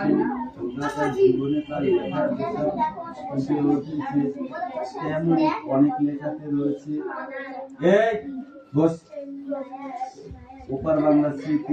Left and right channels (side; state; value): both; identical; correlation 1.00